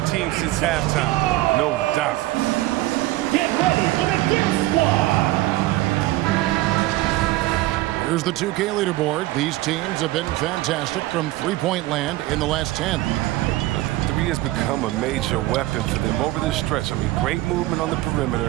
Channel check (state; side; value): quieter; left; 17.6 dB